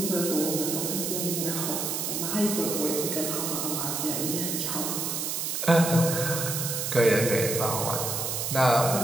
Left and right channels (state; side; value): noise; right; hiss, 2 dB below the sound